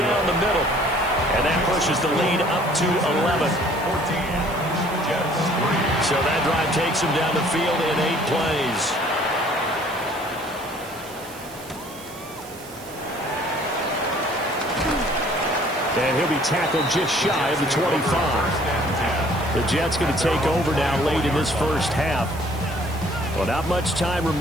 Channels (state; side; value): noise; right; hiss, 18 dB below the sound